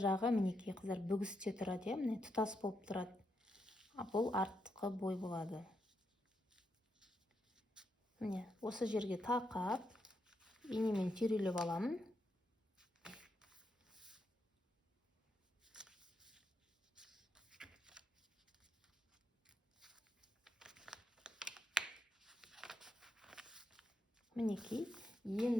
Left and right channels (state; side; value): normal; both; correlation 0.82